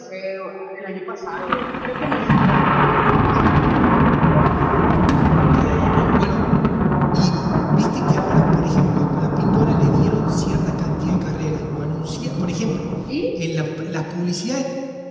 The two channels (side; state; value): both; identical; correlation 1.00